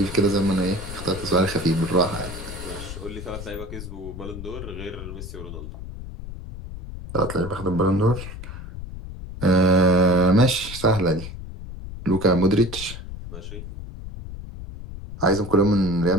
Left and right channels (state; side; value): noise; left; rumble, 10 dB below the sound